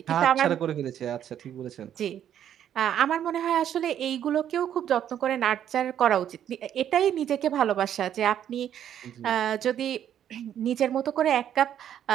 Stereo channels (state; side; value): quieter; left; 10.1 dB